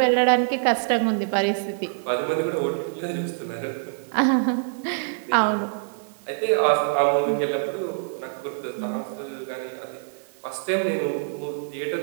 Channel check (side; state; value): left; silent; 57 dB below the other